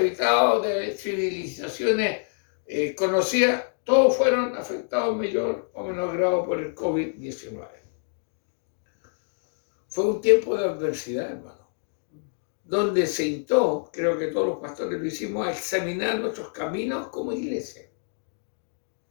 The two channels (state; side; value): silent; right; 61 dB below the other